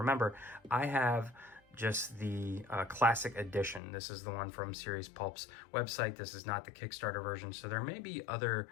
I have just the classic edition. This is the one from Serious Pulp's website. This is not the Kickstarter version, so there may be other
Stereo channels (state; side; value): drops out; right; at 3.8 s